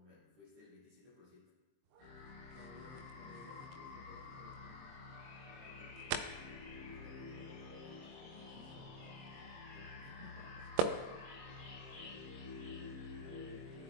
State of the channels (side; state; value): left; late; 23 ms